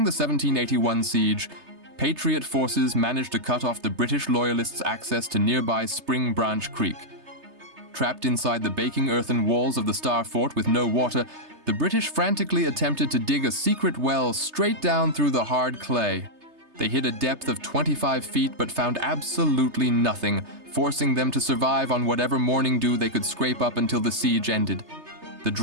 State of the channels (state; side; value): late; left; 3.3 ms